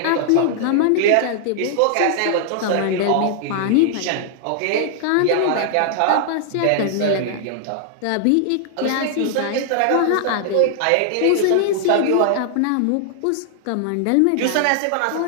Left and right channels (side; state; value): both; different; correlation 0.00